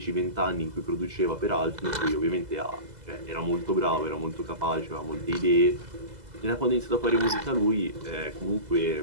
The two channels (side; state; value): left; late; 2.0 ms